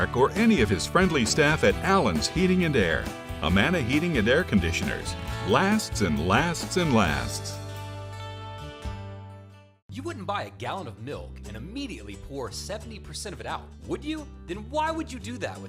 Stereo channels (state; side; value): identical; both; correlation 1.00